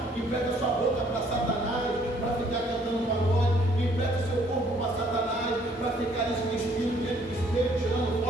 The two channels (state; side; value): normal; both; correlation 0.63